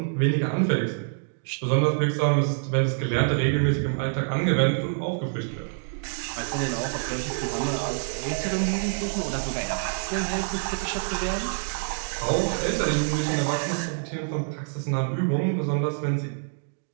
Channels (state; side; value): silent; left; digital silence